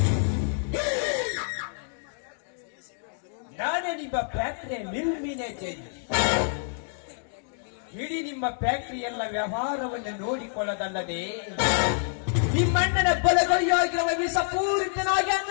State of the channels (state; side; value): silent; right; digital silence